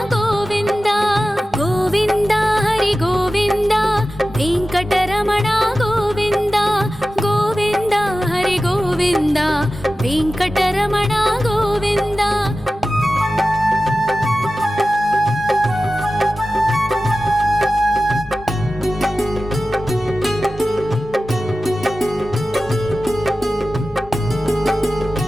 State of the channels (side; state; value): both; normal; correlation 0.95